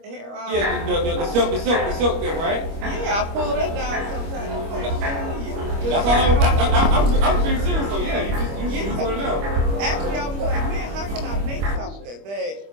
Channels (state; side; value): late; left; 25 ms